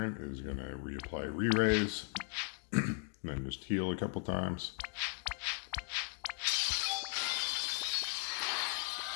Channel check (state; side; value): quieter; right; 39.5 dB